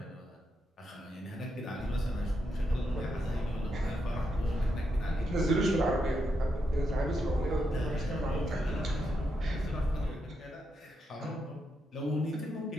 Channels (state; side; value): normal; both; correlation 0.83